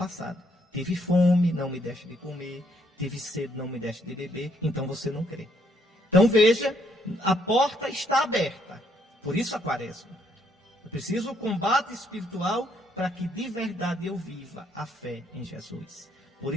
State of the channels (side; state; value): both; normal; correlation 0.71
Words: Tive fome, não me deixe de comer. Tive sede, não me deixe de beber. Então você não crê. Então veja, a porta está aberta. Por isso a quaresma. Eu preciso do combate espiritual para que de verdade eu viva a fé em Jesus. Por